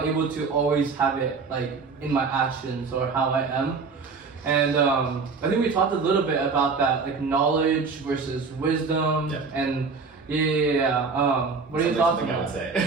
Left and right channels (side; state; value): left; quieter; 4.8 dB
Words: able to always have it in my actions or how I am. And I think we talked a little bit about that, knowledge versus wisdom. And what are your thoughts on that? I would say.